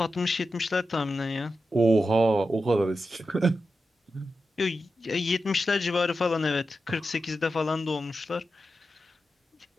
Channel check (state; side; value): normal; both; correlation 0.90